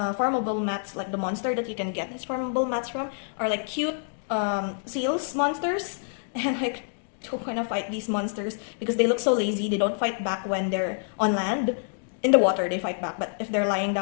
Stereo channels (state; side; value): silent; right; digital silence